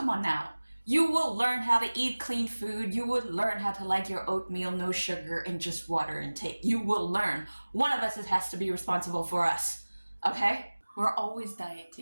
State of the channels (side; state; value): both; inverted; correlation -1.00